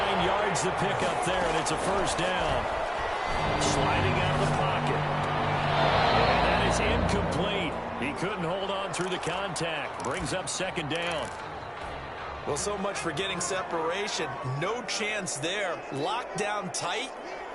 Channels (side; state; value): both; identical; correlation 1.00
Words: 9 yards to pick up there, and it's a 1st down. Sliding out of the pocket. And that is incomplete. He couldn't hold on through the contact. Brings up 2nd down. Well, so much for getting separation. No chance there. Locked down tight,